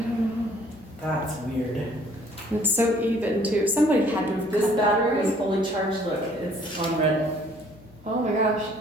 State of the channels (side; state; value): left; noise; hum, 25 dB below the sound